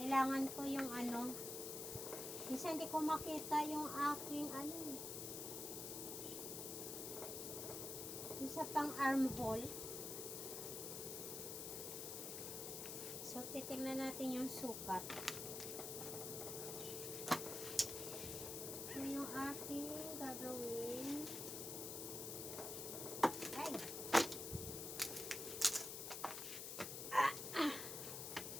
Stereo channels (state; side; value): noise; left; hiss, 5 dB below the sound